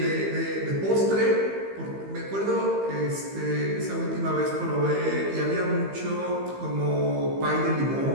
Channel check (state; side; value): late; left; 15 ms